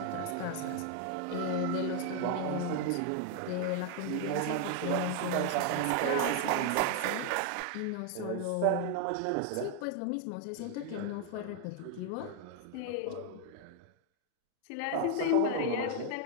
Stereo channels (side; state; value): both; different; correlation 0.00